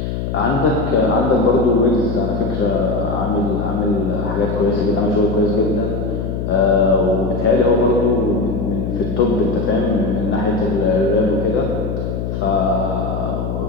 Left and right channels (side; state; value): left; noise; hum, 3 dB below the sound